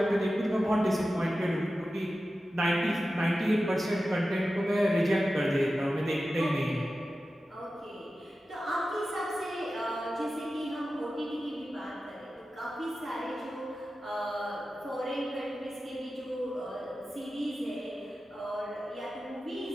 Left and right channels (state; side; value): normal; both; correlation 0.93